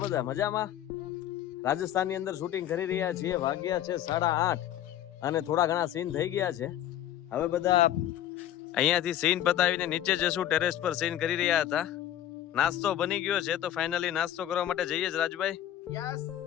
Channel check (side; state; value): right; quieter; 11.9 dB